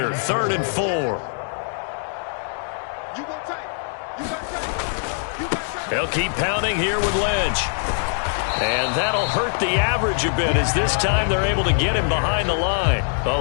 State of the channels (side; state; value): right; silent; digital silence